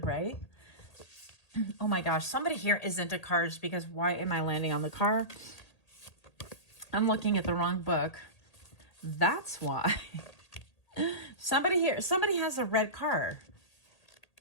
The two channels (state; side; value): late; right; 1.8 ms